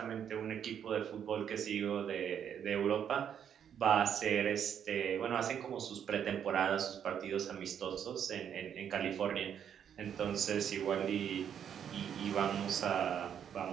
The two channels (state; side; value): quieter; left; 8.7 dB